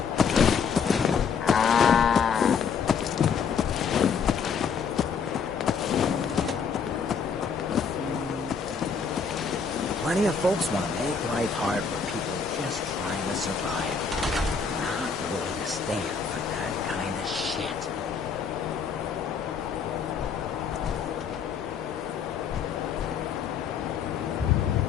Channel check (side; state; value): right; quieter; 6.0 dB